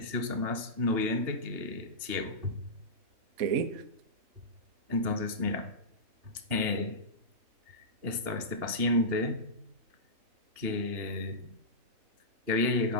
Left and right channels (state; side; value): late; left; 2.8 ms